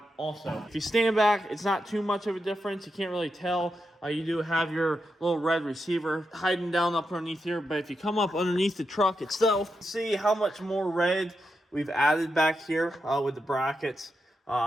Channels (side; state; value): both; normal; correlation 0.86